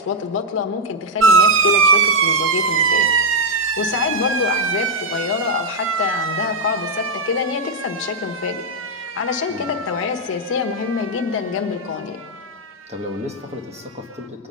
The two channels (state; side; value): normal; both; correlation 0.01